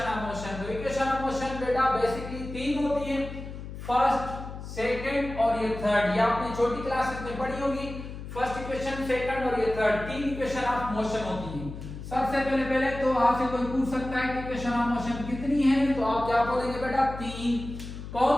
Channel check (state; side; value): noise; left; hum, 10 dB below the sound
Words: ऑफ मोशन। तो इक्वेशन ऑफ मोशन बेटा बेसिकली तीन होती है, फर्स्ट, सेकंड और ये थर्ड। ये आपने छोटी क्लासेस में पढ़ी होगी, फर्स्ट इक्वेशन, सेकंड और ये थर्ड, तीन इक्वेशन ऑफ मोशन होती है। सबसे पहले तो आपसे कोई पूछ सकता है कि इक्वेशन ऑफ मोशन कितनी है, तो आप क्या बोलेंगे बेटा? तीन।